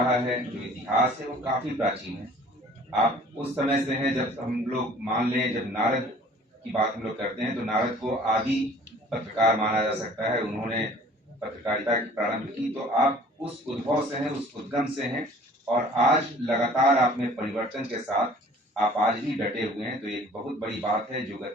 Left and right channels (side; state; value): both; normal; correlation 0.51